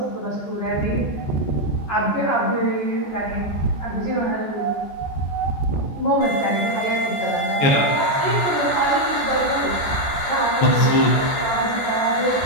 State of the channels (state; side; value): late; right; 14 ms